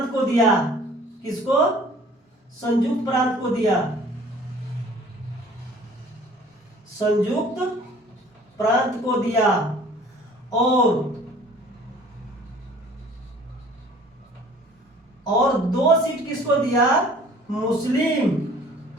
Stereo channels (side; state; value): both; normal; correlation 0.51